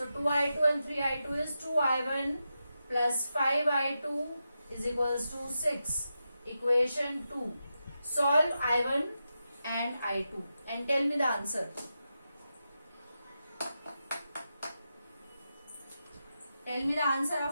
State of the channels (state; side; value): inverted; both; correlation -0.89